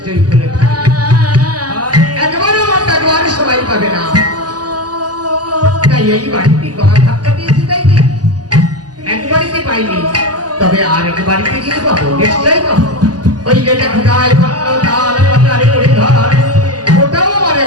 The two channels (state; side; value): late; left; 0.69 ms